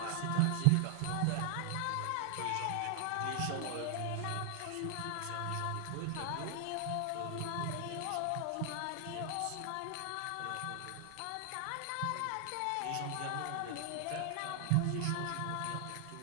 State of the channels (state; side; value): different; both; correlation 0.00